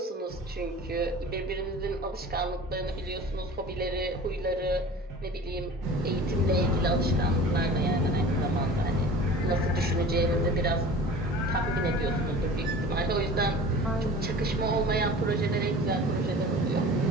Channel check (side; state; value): both; normal; correlation 0.40